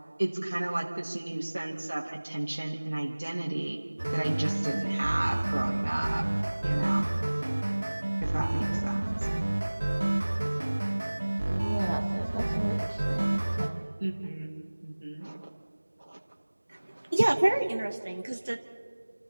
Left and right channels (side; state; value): both; inverted; correlation -1.00